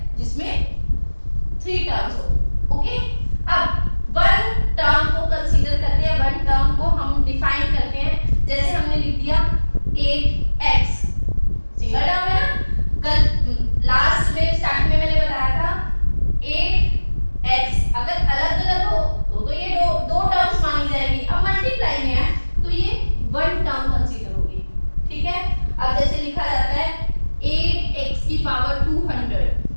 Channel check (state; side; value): inverted; both; correlation -1.00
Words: जिसमें 3 टर्म्स हो। ओके, अब वन टर्म को कंसीडर करते हैं, वन टर्म को हम डिफाइन करते हैं। जैसे हमने लिख दिया 8x, सिंगल टर्म है ना। कल लास्ट में स्टार्टिंग में मैंने बताया था 8x अगर अलग अलग हो तो ये दो टर्म्स मानी जाएगी। अब मल्टीप्लाई में है तो ये वन टर्म कंसीडर होगी। ठीक है, अब जैसे लिखा जाता है 8x की पावर 200,